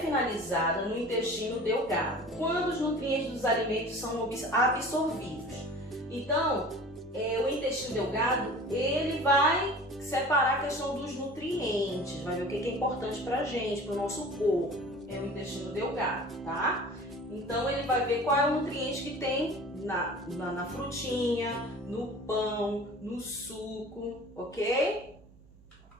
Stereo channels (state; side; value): noise; right; hum, 25 dB below the sound